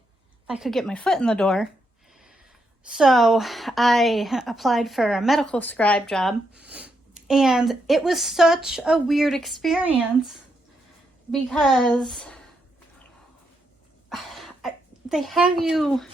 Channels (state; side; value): normal; both; correlation 0.80